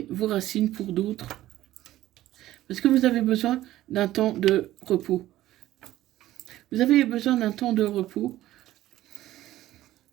vos racines pour d'autres. Parce que vous avez besoin d'un temps de repos. Vous avez besoin d'un temps de repos.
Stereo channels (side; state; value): left; quieter; 14.7 dB